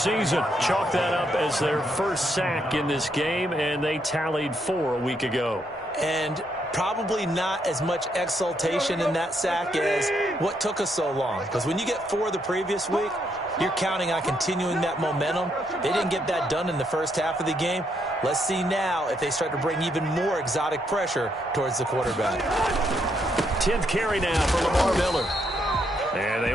Chalk that up as their first sack in this game, and they tallied 4 a week ago. And probably not as much exultation in that sack as what took us so long. Because when you get 4 the previous week, you're counting on continuing that momentum. They didn't get that done in the first half of the game. Let's see now if they start to bring even more exotic pressure towards the quarterback. 10th carry now for Lamar Miller. And they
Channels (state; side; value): normal; both; correlation 0.76